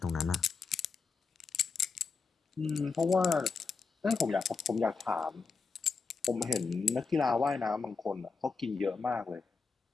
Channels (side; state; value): right; quieter; 4.8 dB